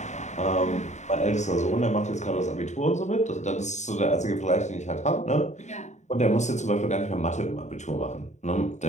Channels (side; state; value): right; late; 0.34 ms